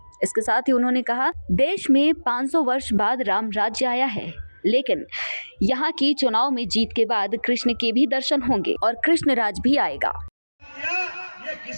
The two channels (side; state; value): both; inverted; correlation -1.00